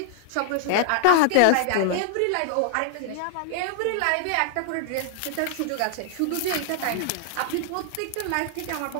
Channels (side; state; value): both; different; correlation 0.00